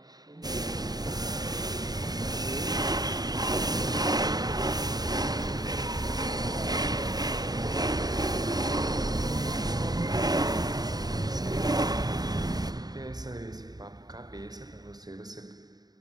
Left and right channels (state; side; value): late; left; 0.19 ms